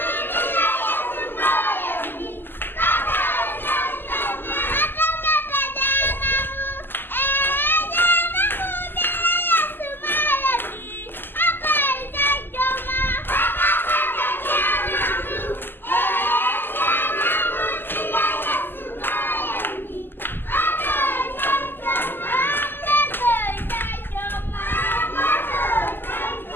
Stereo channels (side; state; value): right; late; 0.096 ms